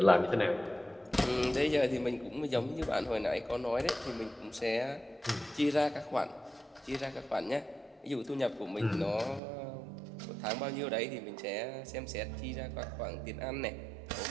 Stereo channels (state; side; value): drops out; left; at 9.4 s